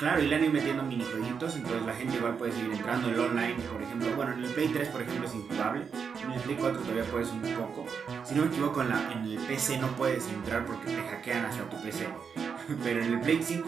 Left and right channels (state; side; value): quieter; left; 6.3 dB